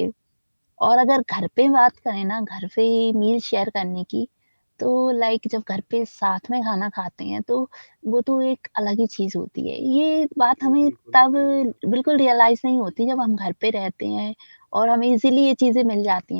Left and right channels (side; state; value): both; inverted; correlation -1.00